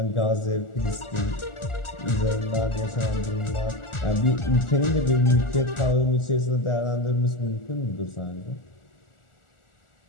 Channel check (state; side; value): late; right; 1.4 ms